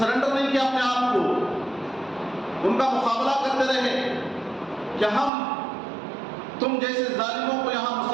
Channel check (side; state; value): left; drops out; at 5.3 s